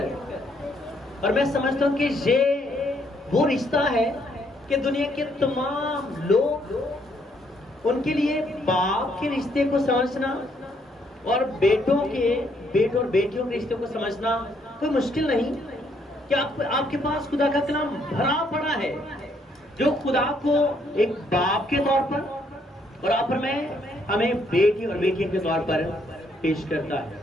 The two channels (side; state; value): both; normal; correlation 0.71